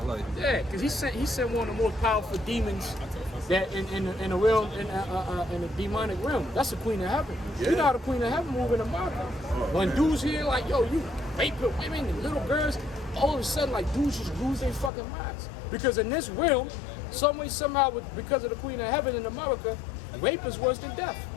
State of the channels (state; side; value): drops out; right; at 14.9 s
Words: Yeah, because he sent one of the most powerful demons that in the realm in the demonic realm. That's the Queen of Heaven. Yeah. You know how the Queen of Heaven move in the market. When dudes hear like, yo, you raping women and little girls, all of a sudden like dudes just lose their fucking minds. Because in this realm, some way, somehow, because of the Queen of Heaven in America, rape is worse than death.